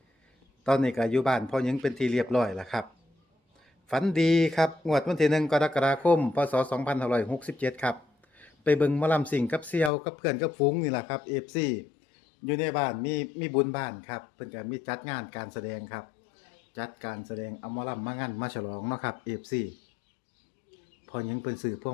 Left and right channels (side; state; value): right; drops out; at 9.9 s